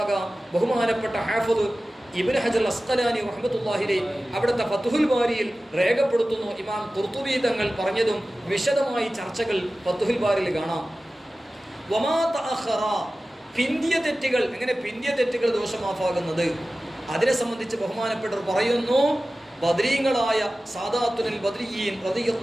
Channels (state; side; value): normal; both; correlation 0.96